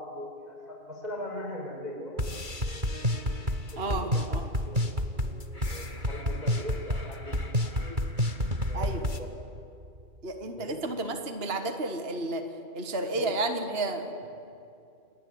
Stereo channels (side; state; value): left; late; 2.3 ms